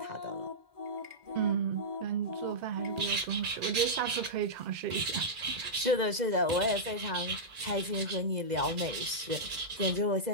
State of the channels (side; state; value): left; late; 2.0 ms